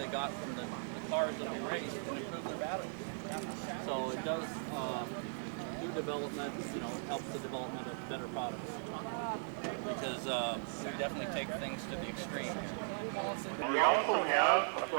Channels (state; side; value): silent; left; digital silence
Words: got from the cars that we raced and improve their batteries. So it does, through development, you know, it helps the development of better products. Because we definitely take things to the extreme. We also have a